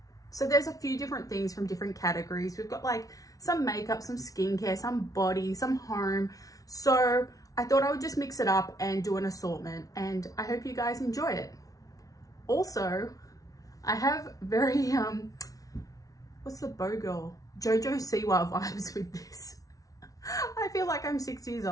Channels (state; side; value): late; right; 0.18 ms